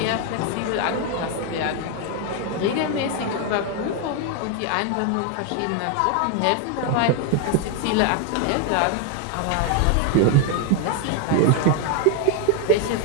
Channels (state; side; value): different; both; correlation 0.01